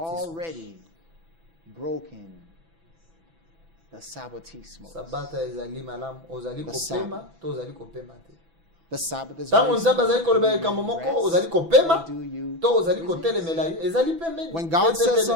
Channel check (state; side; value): late; left; 6.0 ms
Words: already broken the Sabbatismos. sabata ezali malamu ozali The kopema Sabbath. to ozali kopema te The Sabbath is ntango very nzambe simple. azali koloba Do likambo you moko rest ozali kopema or do you to ozali kotelemela ye ezali pembeni. When God says